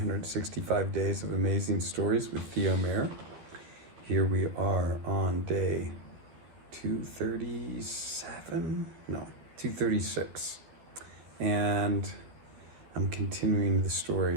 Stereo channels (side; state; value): left; late; 12 ms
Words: Days of Amazing Stories with Theo Mayer. Here we are on day 237? No, 236. And I'm continuing the